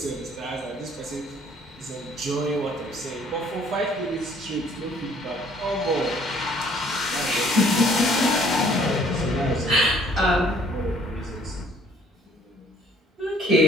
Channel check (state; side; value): normal; both; correlation 0.59